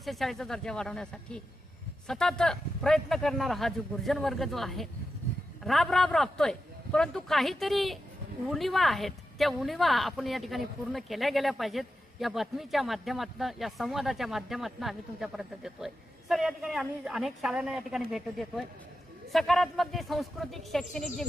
शाळेचा दर्जा वाढवण्यासाठी सतत प्रयत्न करणारा हा जो गुर्जन वर्ग जो आहे राबतोय, परंतु काहीतरी उणिवा आहेत, त्या उणिवा आपण या ठिकाणी पूर्ण केल्या गेल्या पाहिजेत. या बातमीच्या माध्यमातून, या संवादाच्या माध्यमातून आम्ही तुमच्यापर्यंत देतोय. सर, या ठिकाणी आम्ही अनेक शाळांना या ठिकाणी भेट देतोय. सकारात्मक जे सांस्कृतिक शैक्षणिक जे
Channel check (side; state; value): both; normal; correlation 0.90